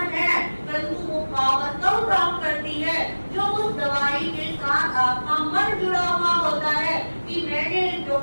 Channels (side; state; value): both; inverted; correlation -1.00